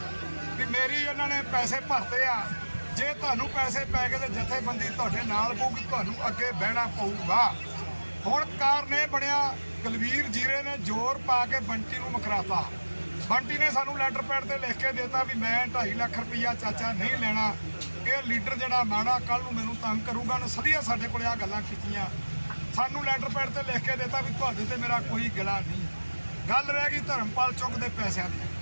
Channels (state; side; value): inverted; both; correlation -1.00